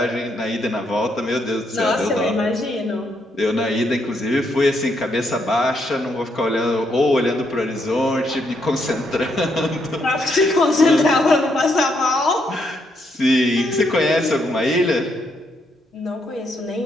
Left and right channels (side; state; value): both; normal; correlation 0.76